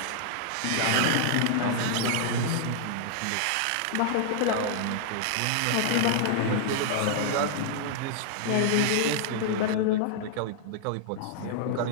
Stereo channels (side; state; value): both; different; correlation -0.01